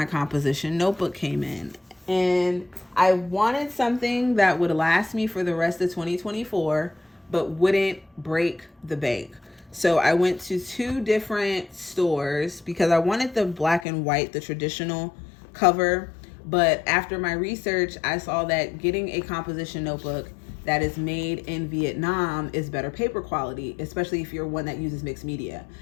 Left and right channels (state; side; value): drops out; right; at 13.9 s